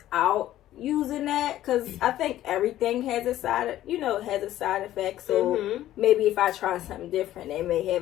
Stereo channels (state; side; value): quieter; right; 13.5 dB